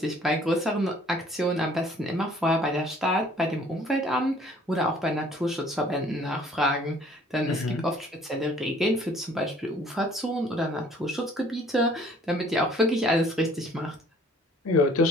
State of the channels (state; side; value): normal; both; correlation 0.57